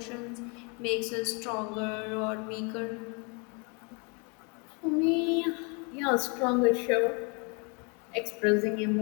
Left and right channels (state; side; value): quieter; right; 33.3 dB